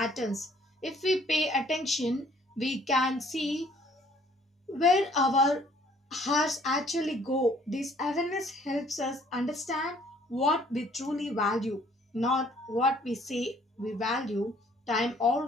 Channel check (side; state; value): both; normal; correlation 0.60